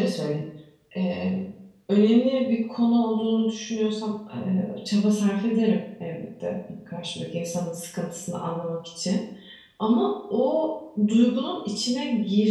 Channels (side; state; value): both; identical; correlation 1.00